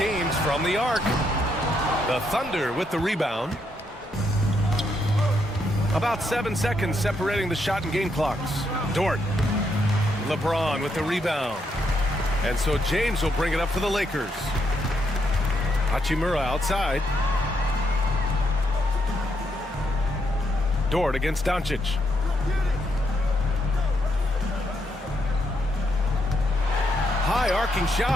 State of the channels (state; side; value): normal; both; correlation 0.77